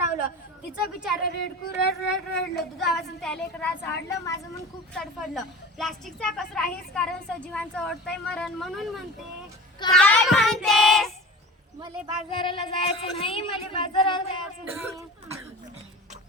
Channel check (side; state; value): both; normal; correlation 0.37